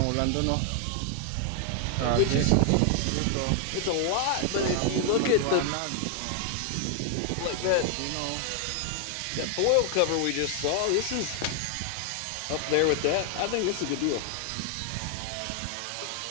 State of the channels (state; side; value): different; both; correlation 0.00